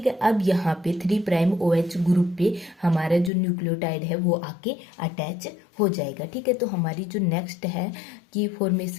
है। अब यहाँ पे 3 प्राइम OH ग्रुप पे हमारा जो न्यूक्लियोटाइड है वो आके अटैच हो जाएगा, ठीक है। तो हमारी जो नेक्स्ट है कि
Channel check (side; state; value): right; drops out; at 3.3 s